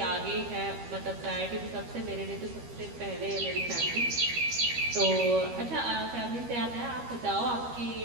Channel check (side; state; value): left; late; 13 ms